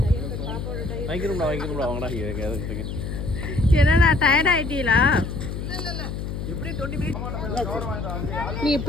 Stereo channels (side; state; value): left; noise; hum, 5 dB below the sound